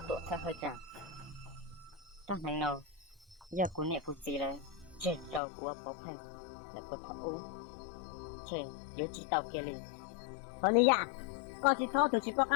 多才会讲。当然了，giờ của nè của chị là trên đầu của bố phèn là của thằng u trên yếu chỉ tàu kia liền còn đi à con chỉ sau từ chỉ có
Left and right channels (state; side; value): drops out; right; at 5.4 s